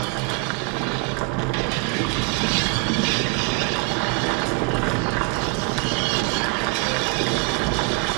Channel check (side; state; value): left; quieter; 29.0 dB